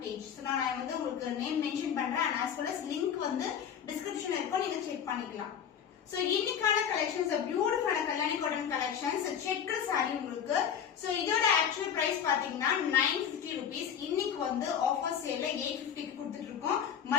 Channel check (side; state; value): right; quieter; 8.3 dB